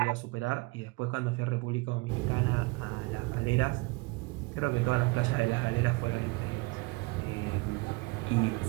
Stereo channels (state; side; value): quieter; left; 25.1 dB